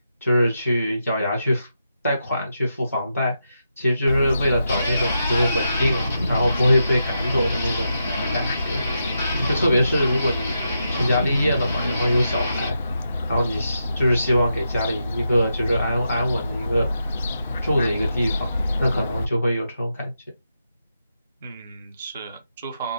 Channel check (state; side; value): inverted; both; correlation -0.85